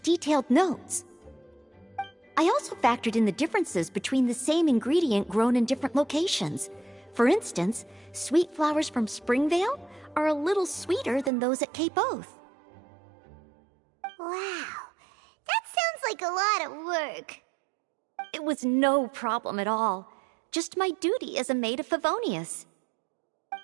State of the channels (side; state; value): left; drops out; at 11.3 s